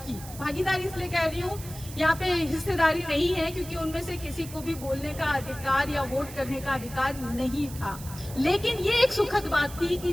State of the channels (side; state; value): right; noise; hiss, 15 dB below the sound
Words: भागीदारी इसलिए कह रही हूँ, यहाँ पे हिस्सेदारी नहीं है क्योंकि उनमें से किसी को भी बोलने का अधिकार या वोट करने का अधिकार नहीं था। लेकिन ये एक सुखद बात थी कि